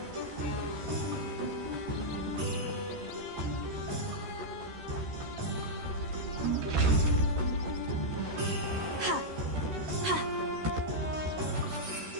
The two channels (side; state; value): left; late; 13 ms